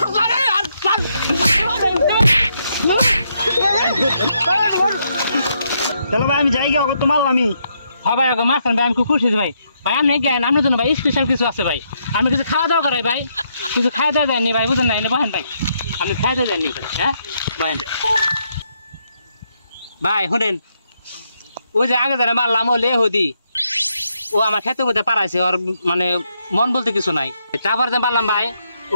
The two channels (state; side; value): inverted; both; correlation -0.77